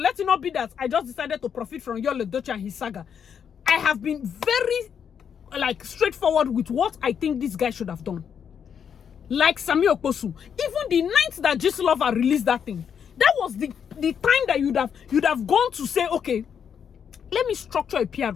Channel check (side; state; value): right; quieter; 7.7 dB